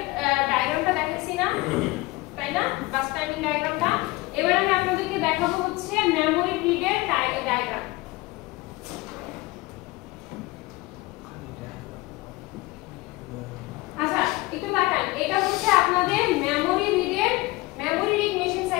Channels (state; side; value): quieter; right; 21.4 dB